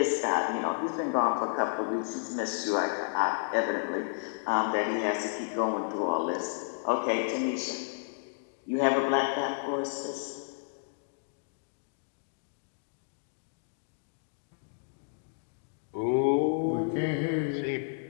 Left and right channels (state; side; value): silent; right; digital silence